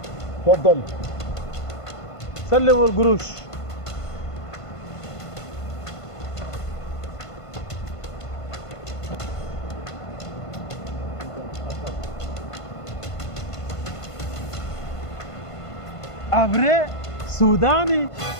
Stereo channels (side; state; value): right; late; 1.5 ms